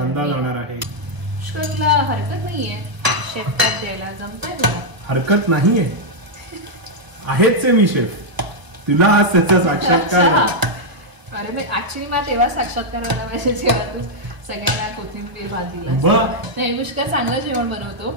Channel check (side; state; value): left; late; 1.0 ms